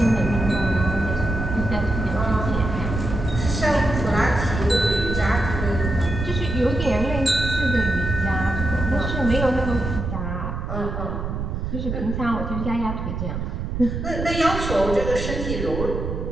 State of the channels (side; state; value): right; noise; rumble, 4 dB below the sound